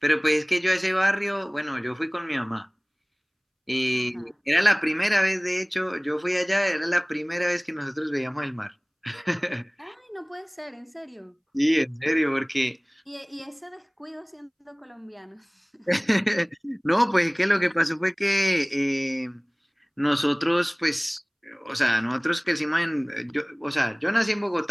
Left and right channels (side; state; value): both; identical; correlation 1.00